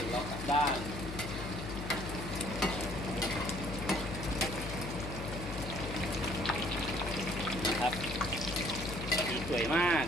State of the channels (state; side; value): noise; left; hum, 7 dB below the sound